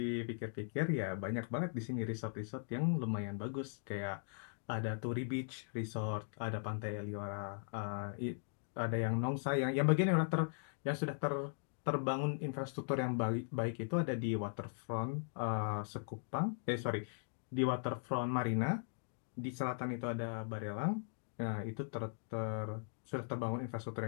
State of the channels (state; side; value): silent; right; digital silence